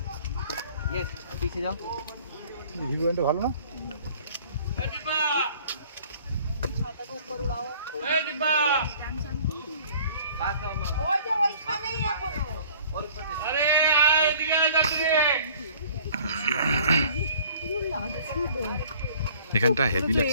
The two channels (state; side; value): inverted; both; correlation -0.53